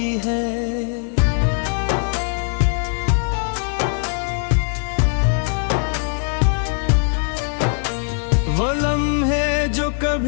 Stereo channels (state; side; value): silent; right; 57 dB below the other